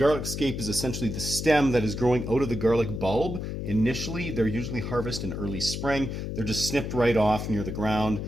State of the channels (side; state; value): left; noise; hum, 5 dB below the sound